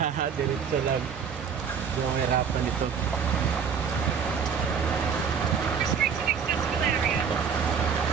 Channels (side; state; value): left; quieter; 6.7 dB